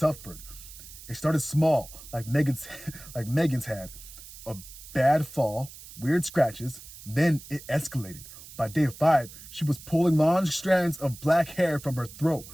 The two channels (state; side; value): noise; right; hiss, 16 dB below the sound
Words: It started small, like Megan's had. A bad fall, weird scratches, then it escalated. By day 5, she was pulling long strands of black hair from her throat,